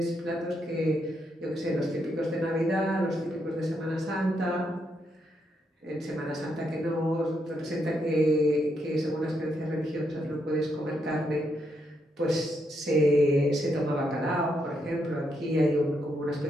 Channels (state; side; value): normal; both; correlation 0.79